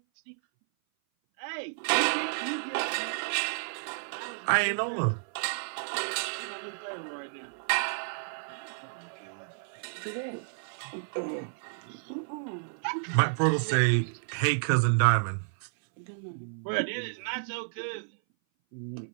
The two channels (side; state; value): left; silent; 57 dB below the other